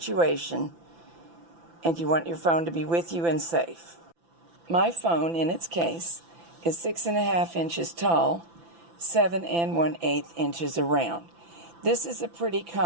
and you want your phone to be with you and safe. My phone, in its case, is 6.5 inches tall, 7 1/8 inches around. This is a pretty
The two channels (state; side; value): late; left; 5.9 ms